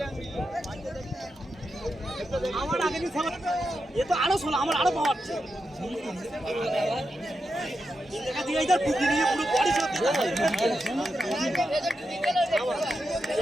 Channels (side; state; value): both; normal; correlation 0.87